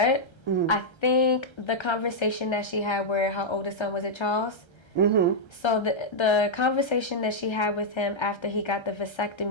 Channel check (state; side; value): late; right; 1.3 ms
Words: I think the conversation that she had where her oldest son was at Charles. So the conversation that she had with him after he got the